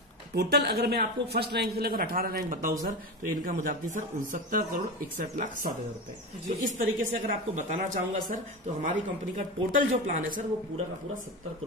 टोटल अगर मैं आपको फर्स्ट रैंक से लेकर 18 रैंक बताऊं सर, तो इनकम हो जाती है सर 69,61,60,000 रुपए। तो इस तरीके से अगर आपको बताना चाहूंगा सर, तो हमारी कंपनी का टोटल जो प्लान है सर, वो पूरा का पूरा 70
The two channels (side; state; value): both; normal; correlation 0.22